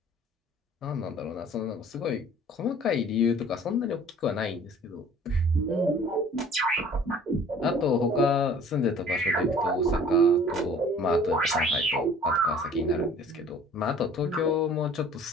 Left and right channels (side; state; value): both; normal; correlation 0.50